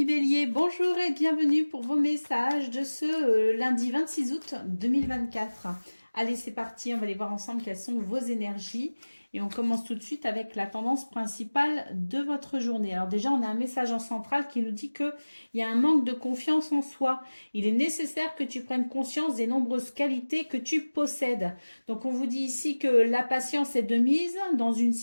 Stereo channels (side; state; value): both; inverted; correlation -1.00